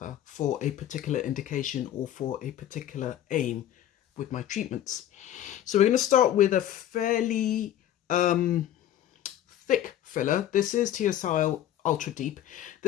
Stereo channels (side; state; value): right; quieter; 11.7 dB